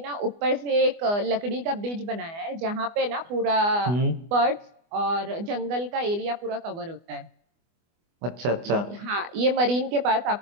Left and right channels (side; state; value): left; late; 24 ms